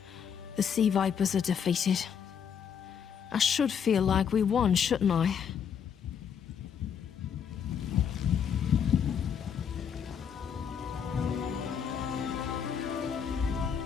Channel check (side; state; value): right; quieter; 7.6 dB